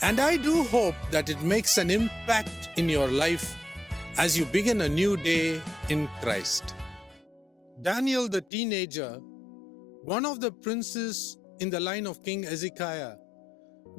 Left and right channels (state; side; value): drops out; right; at 8.5 s